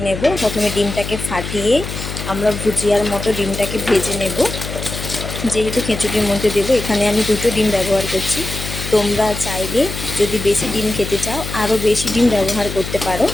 নেব। প্রথমে ডিমটাকে ফাটিয়ে আমরা ভুজিয়ার মতো ডিমটাকে ভেজে নেব। যেহেতু খিচুড়ির মধ্যে দেবো, এখানে আমি 2টো ডিম ব্যবহার করছি। তোমরা চাইলে যদি বেশি ডিম খেতে চাও আরও বেশি ডিম ব্যবহার করতে পারো।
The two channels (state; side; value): noise; left; hum, 7 dB below the sound